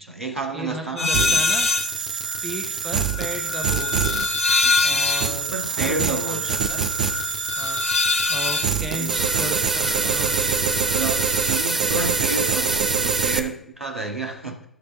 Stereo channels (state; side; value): normal; both; correlation 0.36